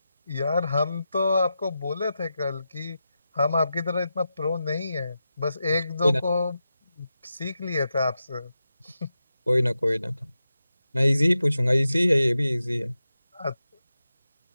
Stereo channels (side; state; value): both; inverted; correlation -0.90